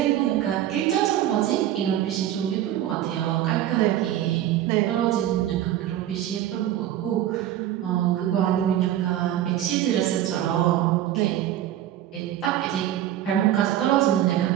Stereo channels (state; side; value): quieter; left; 12.2 dB